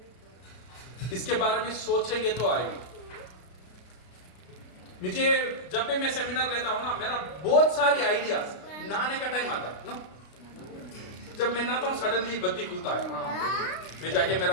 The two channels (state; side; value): late; right; 33 ms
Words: इसके बारे में सोचेंगे तो आएगा। मुझे जब भी मैं सेमिनार लेता हूं ना, मेरा बहुत सारी आइडियाज, नहाने का टाइम आता है ना, जब मैं नहाता हूं सडनली बत्ती खुलता है, मैं जाके